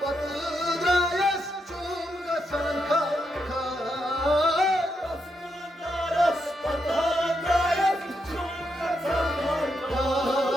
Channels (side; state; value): both; normal; correlation 0.82